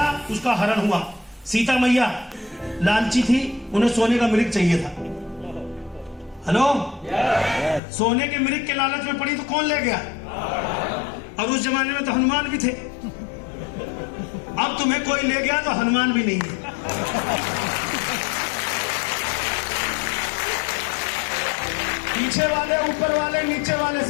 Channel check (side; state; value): right; drops out; at 7.8 s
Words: उसका हरण हुआ। सीता मैया लालची थी, उन्हें सोने का मृग चाहिए था। हेलो, सोने के मृग के लालच में पड़ी तो कौन ले गया? और उस जमाने में तो हनुमान भी थे। अब तुम्हें कोई ले गया तो हनुमान भी नहीं है। पीछे वाले, ऊपर वाले, नीचे वाले,